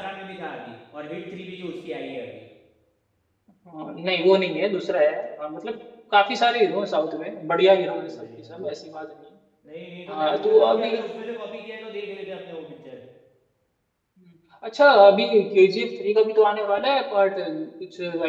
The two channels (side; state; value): both; identical; correlation 1.00